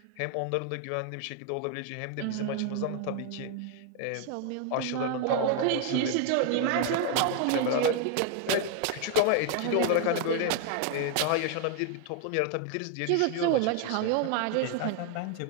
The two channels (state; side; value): different; both; correlation 0.00